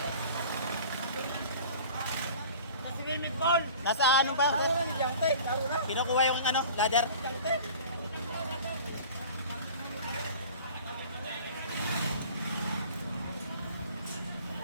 Swimming pool. Nasa ano ba? Kinukuha yung ano, ladder.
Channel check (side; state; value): both; inverted; correlation -0.43